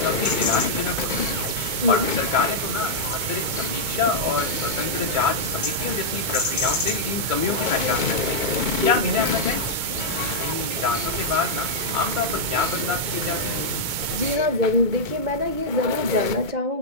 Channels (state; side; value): late; left; 2.2 ms